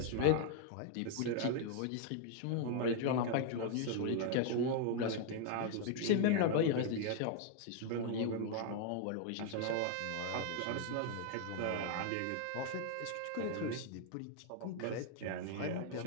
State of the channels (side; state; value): both; different; correlation 0.00